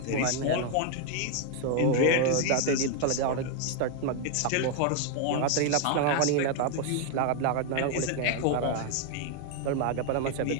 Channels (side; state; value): both; different; correlation 0.00